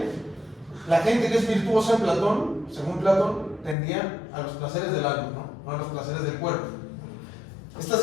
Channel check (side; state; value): right; drops out; at 3.8 s